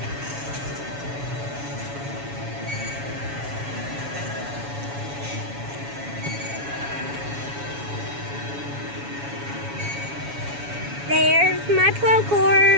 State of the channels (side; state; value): left; late; 7.1 ms